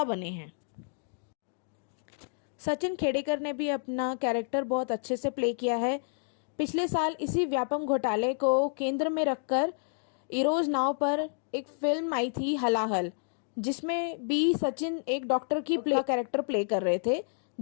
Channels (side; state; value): right; silent; digital silence